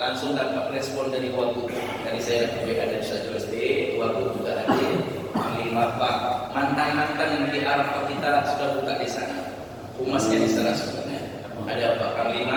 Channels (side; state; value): both; identical; correlation 1.00